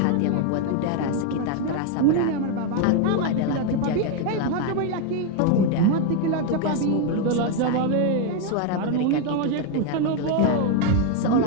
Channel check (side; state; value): both; different; correlation 0.01